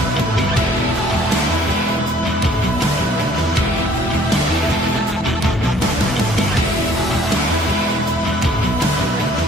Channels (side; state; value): both; normal; correlation 0.57